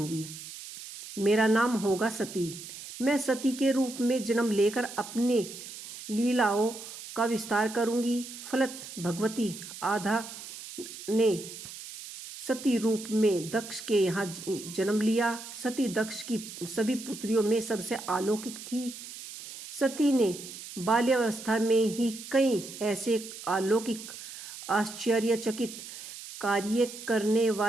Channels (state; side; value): noise; right; hiss, 12 dB below the sound